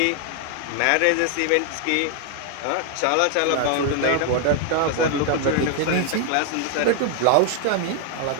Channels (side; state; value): both; different; correlation 0.00